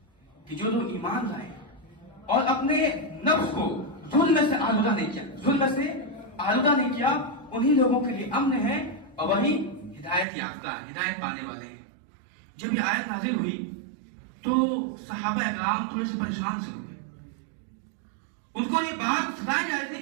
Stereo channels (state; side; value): drops out; left; at 10.2 s